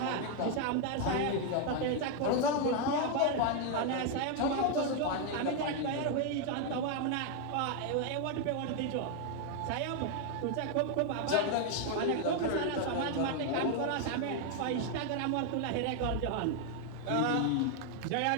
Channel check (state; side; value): different; both; correlation 0.00